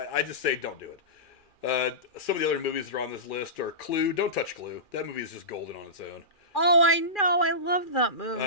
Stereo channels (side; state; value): right; late; 2.4 ms